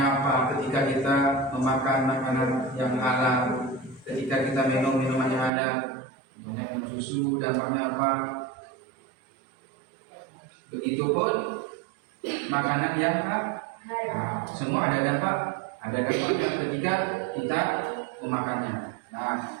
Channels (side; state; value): left; drops out; at 5.5 s